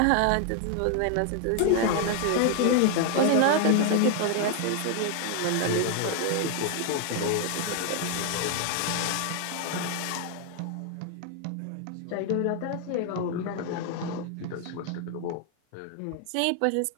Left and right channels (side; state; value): both; different; correlation 0.00